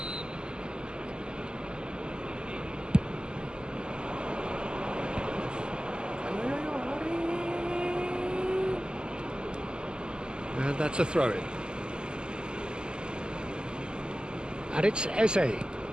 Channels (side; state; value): left; late; 0.047 ms